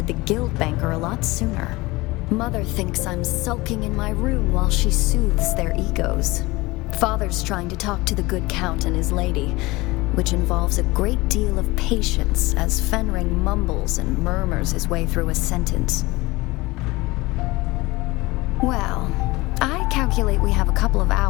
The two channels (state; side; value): quieter; right; 21.6 dB